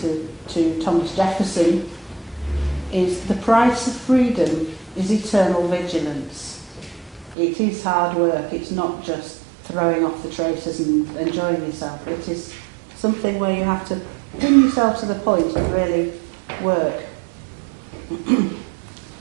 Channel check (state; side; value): drops out; left; at 7.4 s